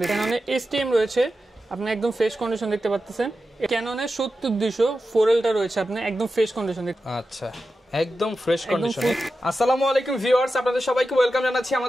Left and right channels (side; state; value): both; normal; correlation 0.91